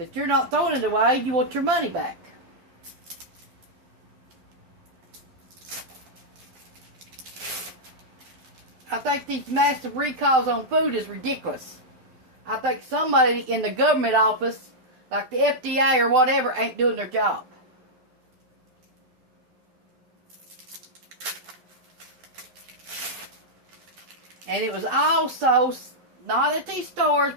you're not throwing it away. You want your money back. I think these massive recalls on food is ridiculous. I think somebody in the government office, like the FDA or whatever, ain't doing their job. And it was also, not at these stores,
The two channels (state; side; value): late; left; 12 ms